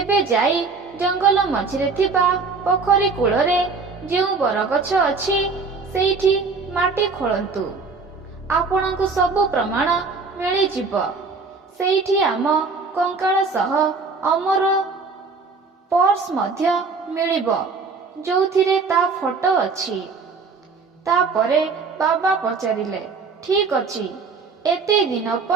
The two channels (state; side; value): quieter; left; 4.5 dB